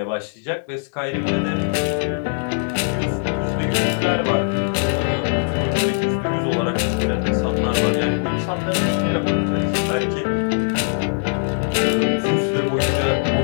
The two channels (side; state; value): right; silent; digital silence